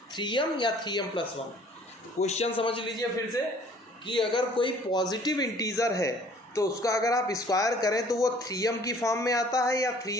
3m या 3m प्लस 1। क्वेश्चन समझ लीजिए फिर से कि अगर कोई पॉजिटिव इंटीजर है तो उसका अगर आप स्क्वायर करें तो वो 3m की फॉर्म में आता है या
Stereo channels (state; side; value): normal; both; correlation 0.55